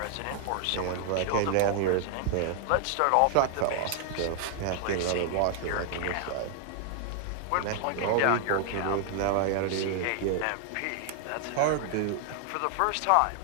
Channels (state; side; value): different; both; correlation 0.00